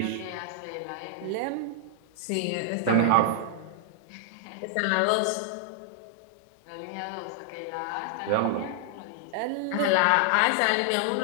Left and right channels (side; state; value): both; different; correlation -0.01